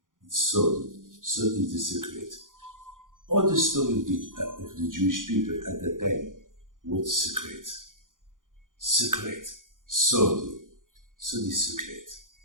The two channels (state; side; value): late; left; 0.89 ms